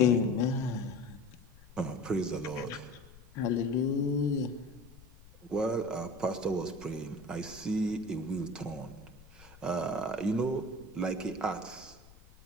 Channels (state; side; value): noise; left; rumble, 22 dB below the sound